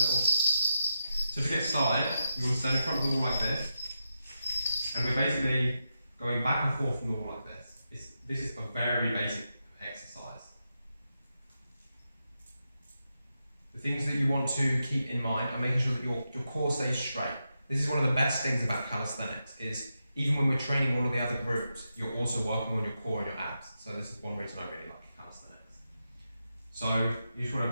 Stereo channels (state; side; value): inverted; both; correlation -0.87